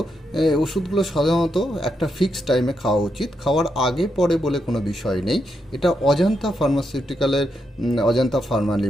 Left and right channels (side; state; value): both; normal; correlation 0.82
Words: ওষুধগুলো সাধারণত একটা ফিক্সড টাইমে খাওয়া উচিত। খাওয়ার আগে পরে বলে কোনো বিষয় নেই। এটা অজন্তা ফার্মাসিউটিক্যালের, অজন্তা ফার্মা